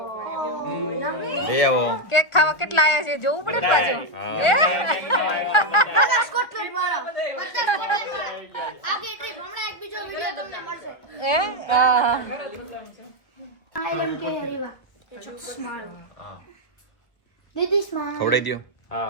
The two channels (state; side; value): late; right; 1.4 ms